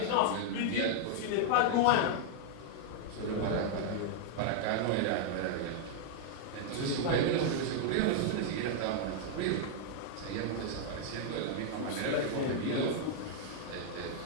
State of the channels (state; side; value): different; both; correlation -0.01